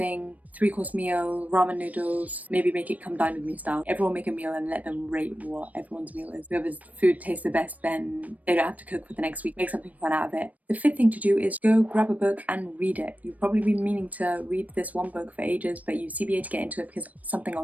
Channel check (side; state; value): left; late; 0.073 ms